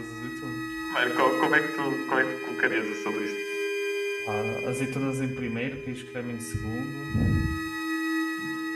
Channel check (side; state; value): both; identical; correlation 1.00